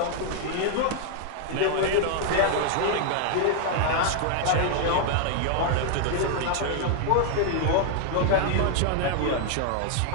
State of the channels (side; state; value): both; different; correlation 0.00